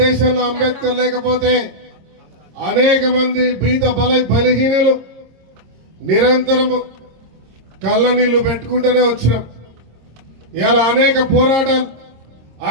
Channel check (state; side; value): late; left; 26 ms